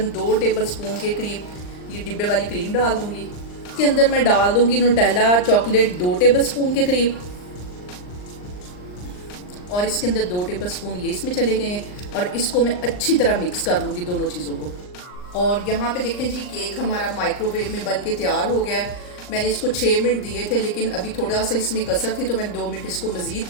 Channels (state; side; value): late; right; 39 ms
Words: 2 टेबलस्पून के करीब ये डिब्बे वाली क्रीम डाल दूँगी। इसके अंदर मैं डाल दूँगी न्यूटेला चॉकलेट 2 टेबलस्पून के करीब, और इसके अंदर 2 टेबलस्पून ये इसमें चले गए हैं। और इसको मैं अच्छी तरह मिक्स कर लूँगी दोनों चीज़ों को। और यहाँ पे देखें जी, केक हमारा माइक्रोवेव में बन के तैयार हो गया है। मैंने इसको 6 मिनट दिए थे, लेकिन अभी थोड़ा सा इसमें कसर थी तो मैंने 2 मिनट इसको मज़ीद